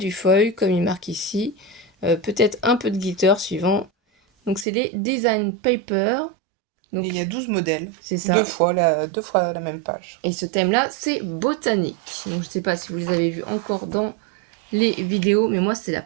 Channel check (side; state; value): left; drops out; at 4.7 s